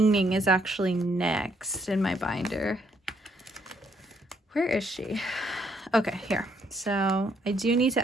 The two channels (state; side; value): normal; both; correlation 0.71